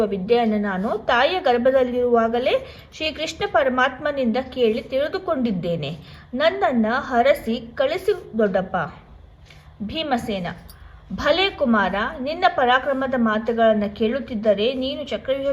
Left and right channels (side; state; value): both; identical; correlation 1.00